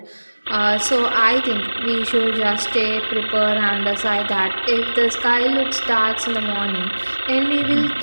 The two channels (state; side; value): inverted; both; correlation -1.00